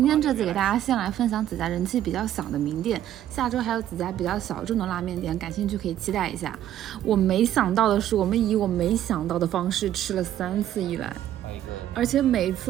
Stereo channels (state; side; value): quieter; left; 11.8 dB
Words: 天这次给大家先来分享几家人气比较小的名店，下周还有几家比较小众的拉面店，感兴趣可以期待一下。我没想到的是，我们以我没想到的方式吃了3次一兰，而且每一